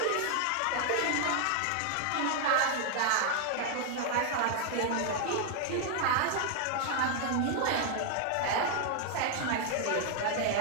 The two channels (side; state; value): both; different; correlation 0.00